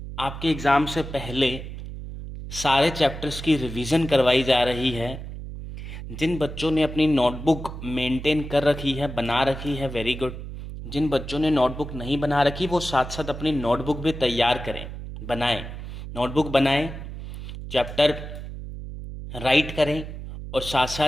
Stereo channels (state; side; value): noise; right; hum, 9 dB below the sound